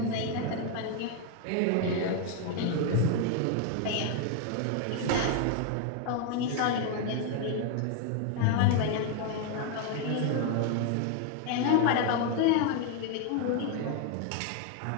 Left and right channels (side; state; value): both; different; correlation 0.01